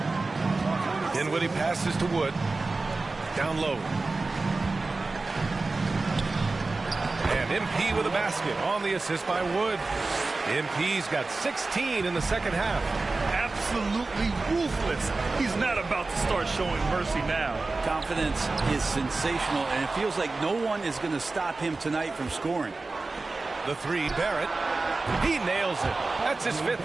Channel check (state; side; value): quieter; left; 3.5 dB